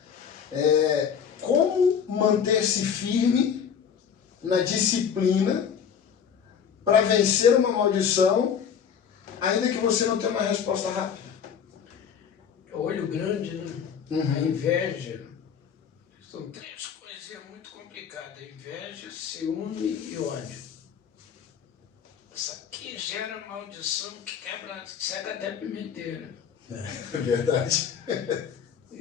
Como manter-se firme na disciplina para vencer uma maldição, ainda que você não tenha uma resposta rápida? Olho grande, né? A inveja. São três coisinhas muito complicadas. Inveja, ciúme e ódio. Isso aqui gera maldição que quebra, cega até pimenteira. É verdade.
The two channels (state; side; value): quieter; right; 7.5 dB